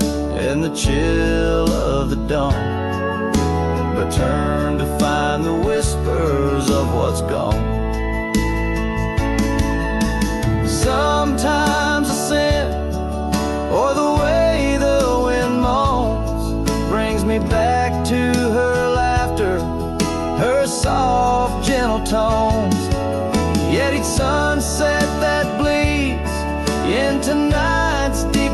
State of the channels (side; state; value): both; identical; correlation 1.00